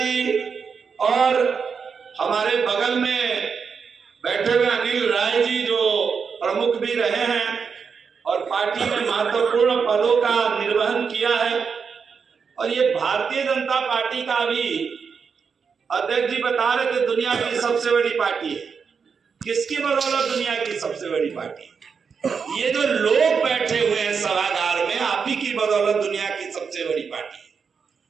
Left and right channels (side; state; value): left; quieter; 5.9 dB